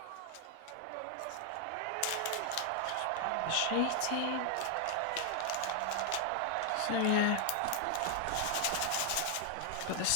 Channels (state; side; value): different; both; correlation 0.00